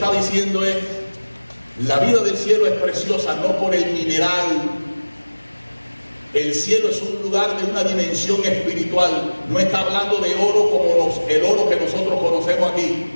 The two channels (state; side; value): inverted; both; correlation -1.00